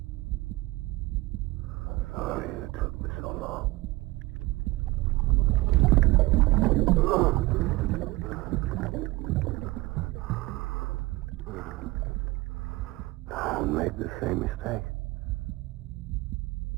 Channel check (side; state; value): left; quieter; 21.1 dB